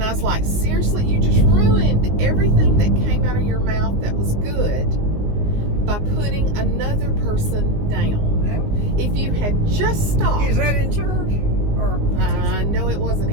I was like, seriously, you just ruined everything that came out of your mouth that was good by putting another person down. Yeah. If you had just stopped. Is that in church? No, it wasn't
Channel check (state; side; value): late; left; 19 ms